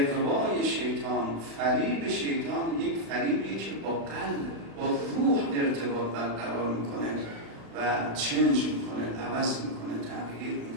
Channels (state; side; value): late; left; 36 ms